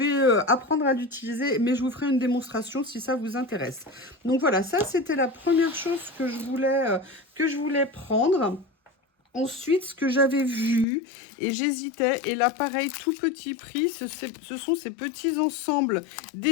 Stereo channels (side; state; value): right; drops out; at 10.9 s